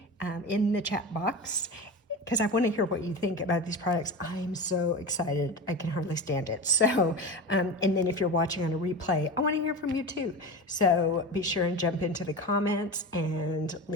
in the chat box, because I want to hear what you think about these products. I'm so excited. I can hardly stand it. So, and then if you're watching on a replay, I want to hear from you too. So be sure and jump into the comments and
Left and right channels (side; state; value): both; normal; correlation 0.26